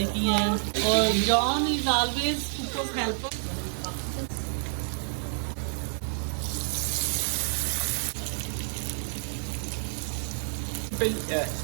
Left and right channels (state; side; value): silent; left; 59 dB below the other